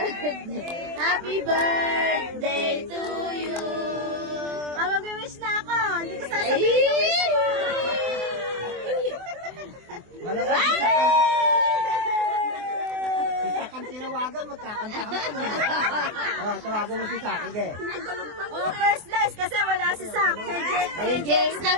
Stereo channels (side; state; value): left; late; 24 ms